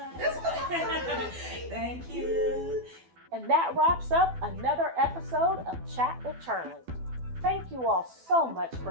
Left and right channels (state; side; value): late; left; 12 ms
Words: what I Thank you. And that wraps up another episode of Chat with Charli. Thank you all so much